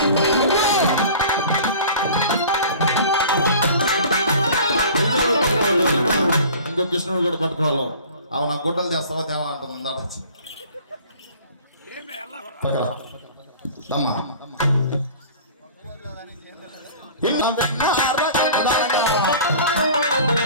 ఇంకో కృష్ణుడు కూడా పట్టుకోవాలి. అవును నా గుడ్డలు చేస్తావా దేవా అంటుంది దమ్మా.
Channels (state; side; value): inverted; both; correlation -0.44